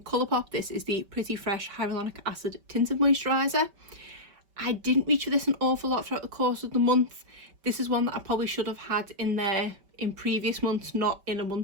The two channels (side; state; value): left; late; 5.2 ms